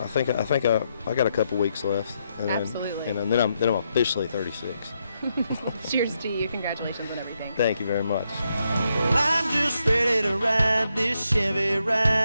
think I got a couple weeks left, and absolutely. Then I'm officially 36. Cheers to you. Congratulations on everything. Thank you very much. Well, I'm just ready to ride this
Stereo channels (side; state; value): both; inverted; correlation -0.80